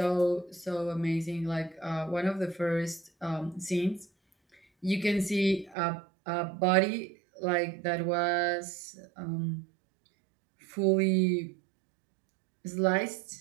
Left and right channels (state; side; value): drops out; left; at 5.8 s